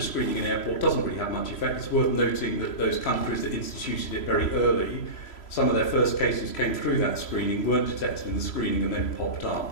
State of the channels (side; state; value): right; late; 3.0 ms